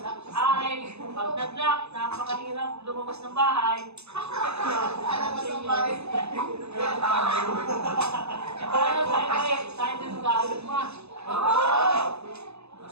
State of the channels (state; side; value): late; left; 0.80 ms